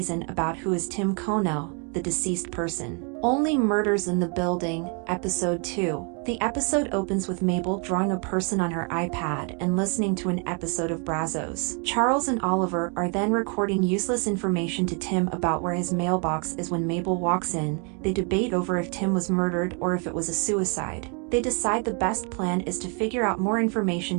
about who is Tim Kono, the deceased person. Only Murders in the Building, Episode 2. The episode opens with Mabel drawing a person on her iPad and listening to an episode of Brazos. Charles and Oliver are then recording useless information to Tim about where his mailbox is. When Mabel walks in, they debate over if Tim was murdered or if it was a suicide. They decide the best plan is to figure out more information,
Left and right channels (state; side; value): quieter; left; 36.9 dB